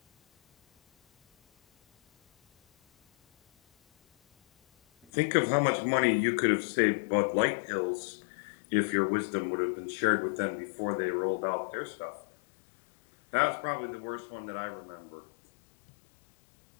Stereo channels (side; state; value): right; drops out; at 5.1 s